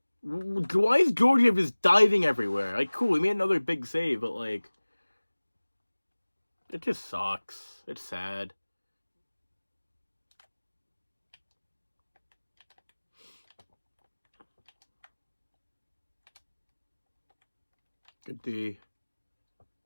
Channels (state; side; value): inverted; both; correlation -1.00